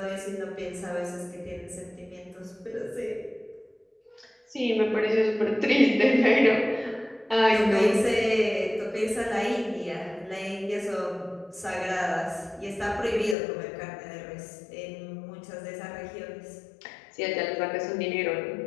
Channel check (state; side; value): drops out; right; at 13.4 s